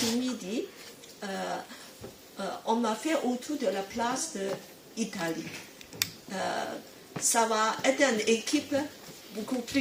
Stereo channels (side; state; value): both; identical; correlation 1.00